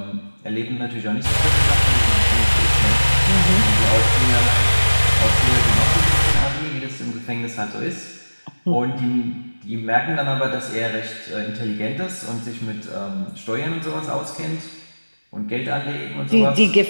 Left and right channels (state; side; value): inverted; both; correlation -1.00